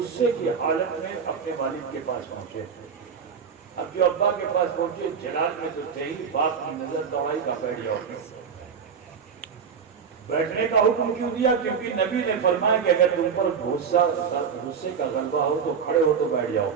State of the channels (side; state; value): left; quieter; 6.5 dB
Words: کی حالت میں اپنے والد کے پاس پہنچے. اب جو ابا کے پاس پہنچے, جلال میں تو تھے ہی, باپ کی نظر دوائی کا بیٹھ جاؤ. بیٹھنے کا حکم کیوں دیا؟ کیونکہ نبی نے فرمایا کہ اگر تم پر غصے کا غلبہ ہو تو کھڑے ہو تو بیٹھ جاؤ.